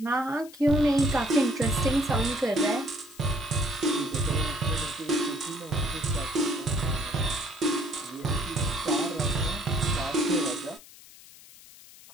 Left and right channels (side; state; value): left; noise; hiss, 20 dB below the sound